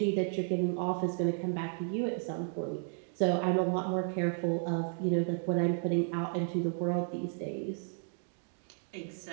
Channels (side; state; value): left; silent; 56 dB below the other